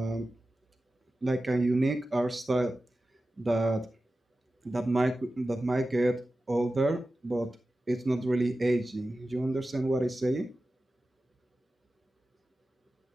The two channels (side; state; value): both; normal; correlation 0.94